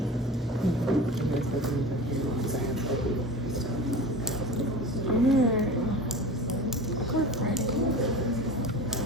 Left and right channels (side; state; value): both; normal; correlation 0.34